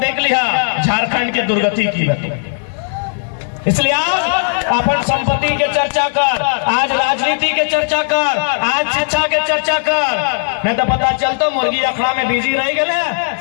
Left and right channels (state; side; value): silent; right; digital silence